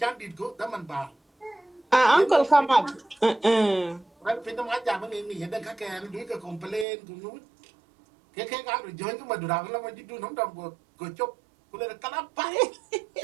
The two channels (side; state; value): left; drops out; at 6.9 s